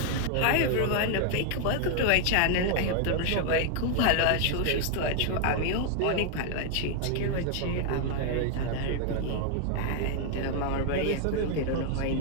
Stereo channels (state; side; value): different; both; correlation 0.00